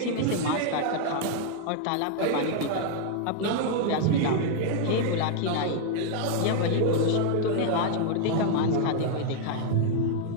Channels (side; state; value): both; different; correlation 0.00